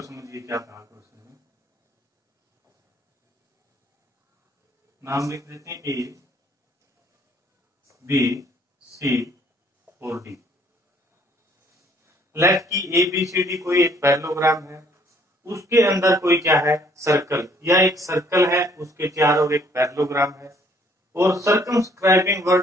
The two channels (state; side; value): normal; both; correlation 0.62